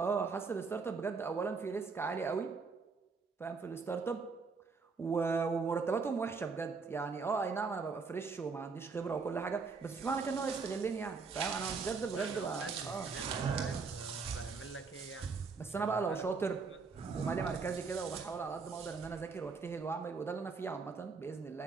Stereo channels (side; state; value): left; quieter; 4.7 dB